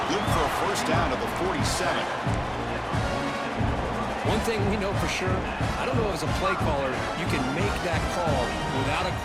good for a first down at the 47. One thing we know for sure, I don't know as a play caller, you can make that call without a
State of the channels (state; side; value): identical; both; correlation 1.00